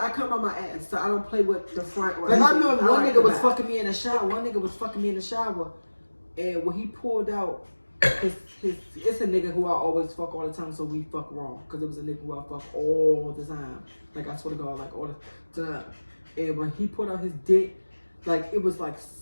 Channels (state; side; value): inverted; both; correlation -1.00